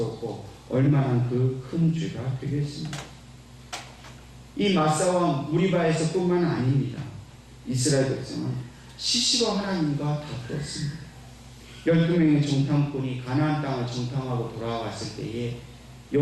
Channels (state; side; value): identical; both; correlation 1.00